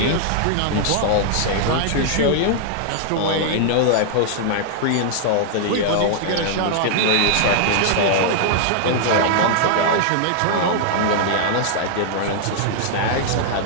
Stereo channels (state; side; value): different; both; correlation -0.01